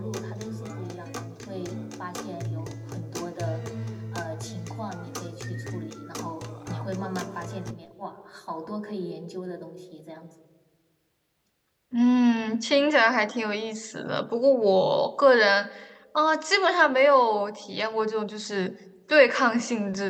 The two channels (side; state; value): both; identical; correlation 1.00